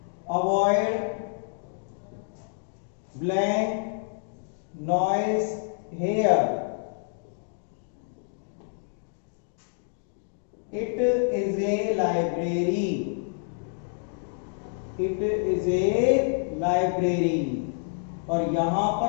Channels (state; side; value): silent; right; digital silence